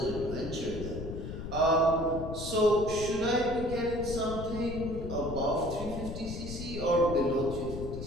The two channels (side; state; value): left; noise; rumble, 8 dB below the sound